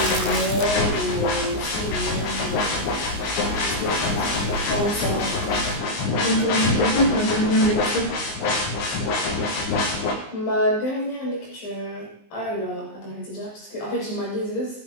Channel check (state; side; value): late; right; 19 ms